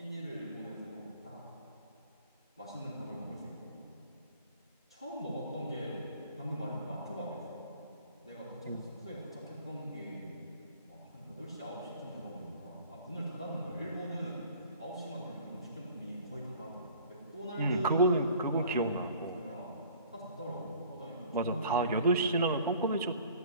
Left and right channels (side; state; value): both; inverted; correlation -0.50